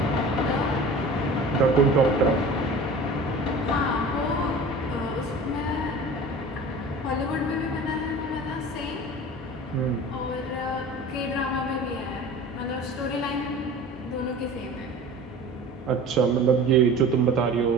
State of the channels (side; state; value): both; normal; correlation 0.39